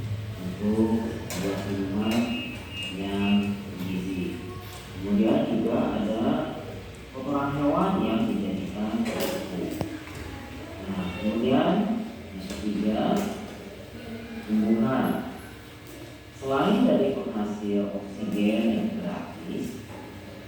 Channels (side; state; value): both; identical; correlation 1.00